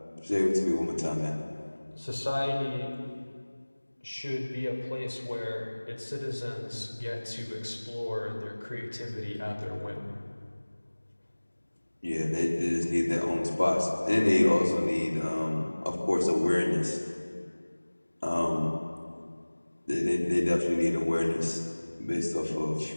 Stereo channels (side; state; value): both; inverted; correlation -1.00